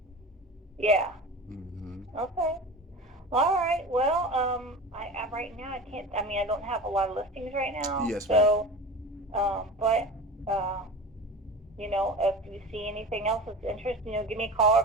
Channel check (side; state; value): both; normal; correlation 0.33